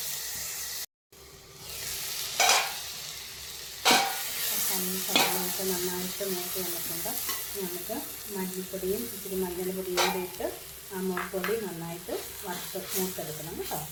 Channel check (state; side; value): identical; both; correlation 1.00